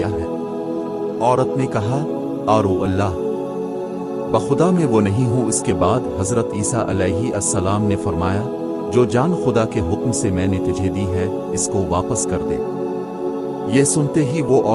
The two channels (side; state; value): both; identical; correlation 1.00